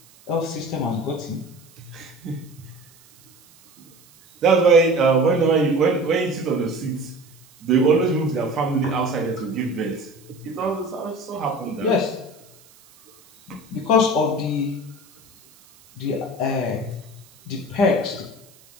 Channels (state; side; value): noise; right; hiss, 27 dB below the sound